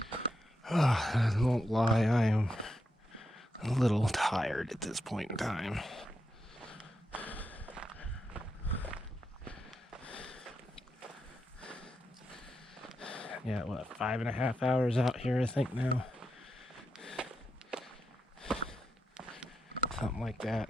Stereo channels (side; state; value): both; normal; correlation 0.85